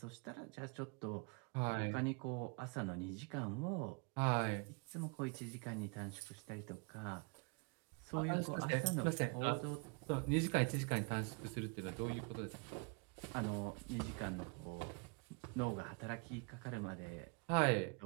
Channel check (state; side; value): quieter; left; 33.0 dB